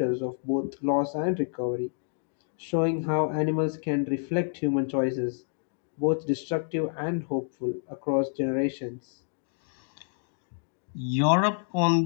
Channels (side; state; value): right; silent; digital silence